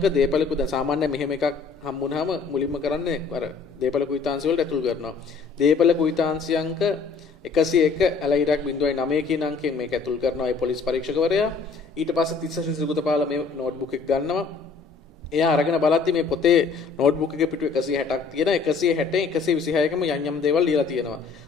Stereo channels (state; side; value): quieter; right; 5.0 dB